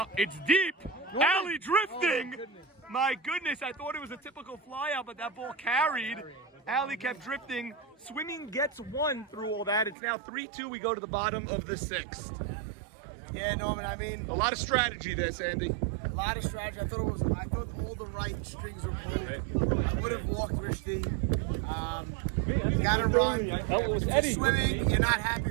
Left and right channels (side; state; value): left; drops out; at 10.0 s